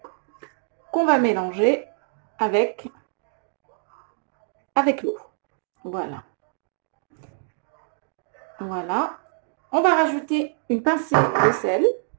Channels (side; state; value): left; silent; 62 dB below the other